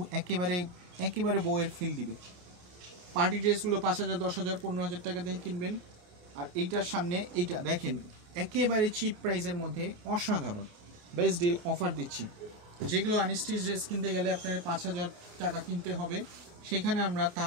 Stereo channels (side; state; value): left; late; 29 ms